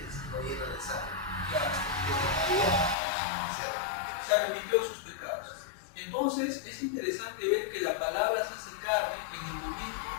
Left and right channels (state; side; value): drops out; right; at 3.0 s